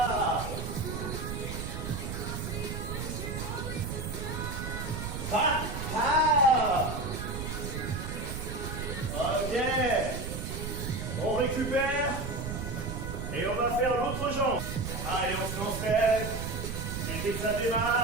Pacha. Ok. On récupère. Et on va faire l'autre jambe. Allez, on se lance. Et dès que ça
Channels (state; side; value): noise; right; rumble, 5 dB below the sound